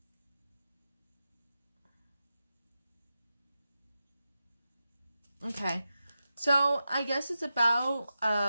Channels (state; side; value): inverted; both; correlation -0.91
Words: Okay, so I guess it's about